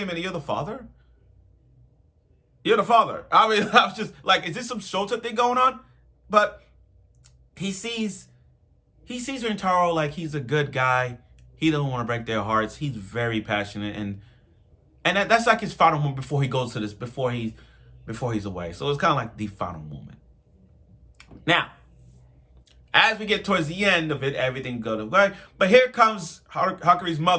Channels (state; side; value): identical; both; correlation 1.00